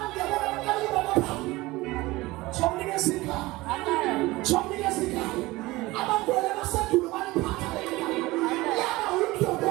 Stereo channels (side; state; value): left; quieter; 20.2 dB